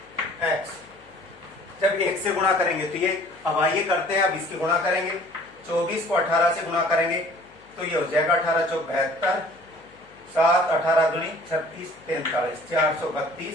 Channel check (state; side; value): noise; left; hum, 28 dB below the sound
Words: एक्स। जब 1 से गुणा करेंगे तो ये, अब आइए करते हैं, अब इसकी गुणा करेंगे। 24 को 18 से गुणा करेंगे तो ये हो जाएगा 18 चौक 72, 7 18 दूनी 36 43 432